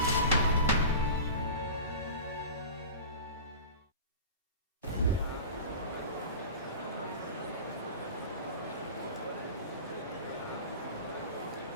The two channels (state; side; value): inverted; both; correlation -0.33